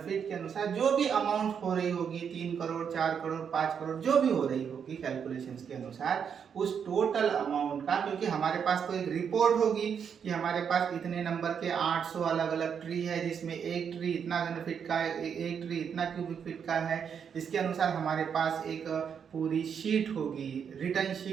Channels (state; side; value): quieter; left; 7.3 dB